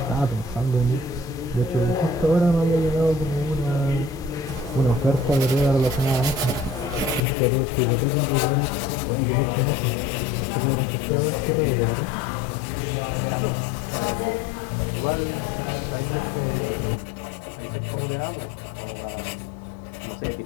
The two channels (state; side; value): drops out; right; at 7.2 s